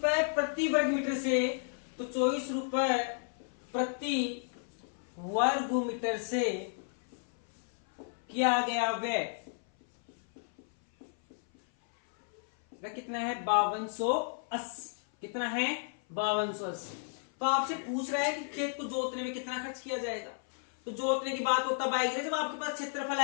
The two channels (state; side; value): silent; right; 56 dB below the other